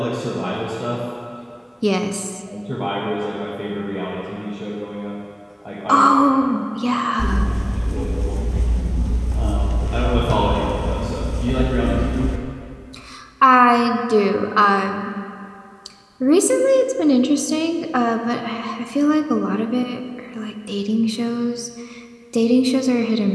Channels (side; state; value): both; identical; correlation 1.00